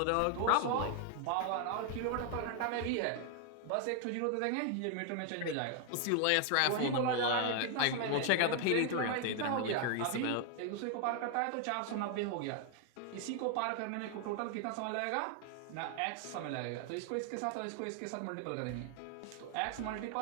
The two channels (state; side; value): different; both; correlation 0.00